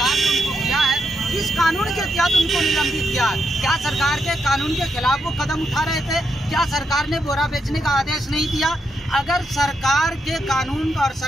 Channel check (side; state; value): both; normal; correlation 0.81